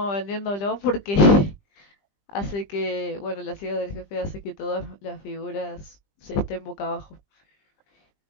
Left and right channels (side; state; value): right; late; 20 ms